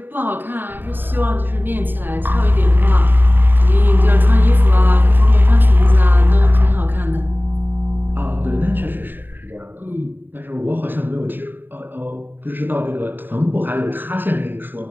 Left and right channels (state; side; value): late; left; 0.093 ms